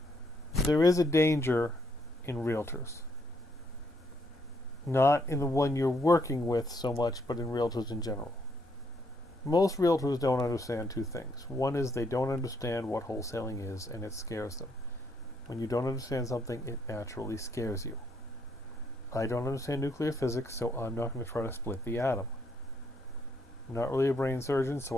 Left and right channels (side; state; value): both; normal; correlation 0.73